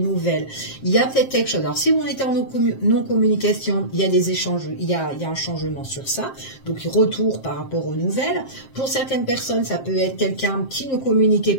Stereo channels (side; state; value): right; late; 7.5 ms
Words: Il y a peut-être quelque chose. Alors, si on était en non-communication, il y a des échanges, il y a un changement sur ça. Donc, retour par rapport aux nouvelles. Pour certaines personnes, ça peut être quelqu'un qui ne communiquait